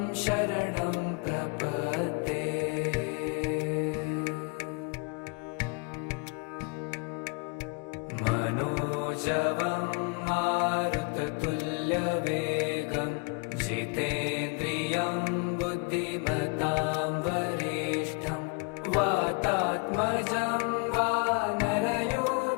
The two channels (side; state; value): right; quieter; 32.3 dB